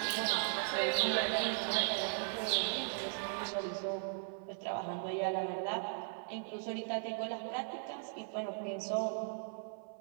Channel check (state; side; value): silent; left; 53 dB below the other